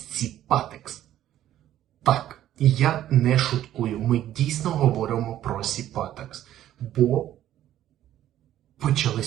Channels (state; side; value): quieter; left; 12.4 dB